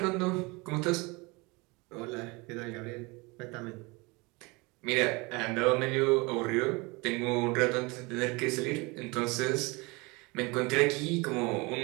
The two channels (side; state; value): left; quieter; 26.1 dB